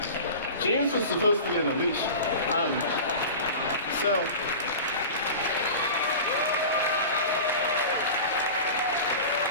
James was supposed to be on the leash.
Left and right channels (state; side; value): inverted; both; correlation -0.33